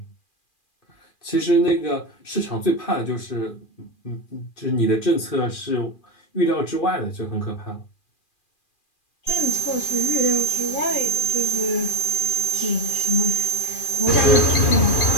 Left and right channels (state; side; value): late; right; 2.4 ms